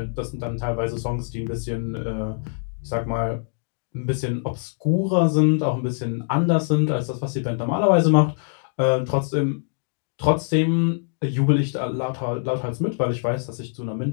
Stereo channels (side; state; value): right; silent; digital silence